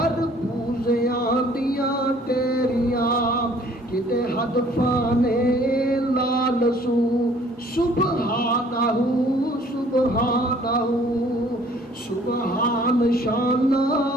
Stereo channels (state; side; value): normal; both; correlation 0.57